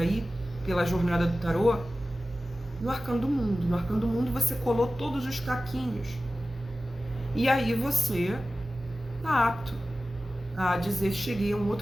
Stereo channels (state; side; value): normal; both; correlation 0.95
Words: pela jornada do tarô, no arcano do mundo. No arcano do mundo você colou todos os caquinhos. E aí você está apto a dizer: cheguei a um